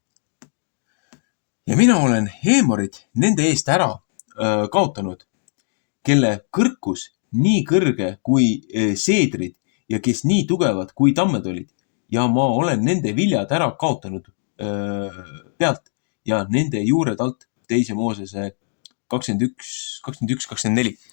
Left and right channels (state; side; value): silent; right; digital silence